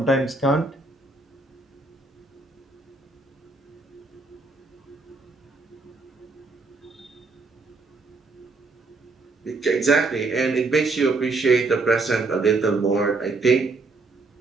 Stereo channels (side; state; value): left; quieter; 3.6 dB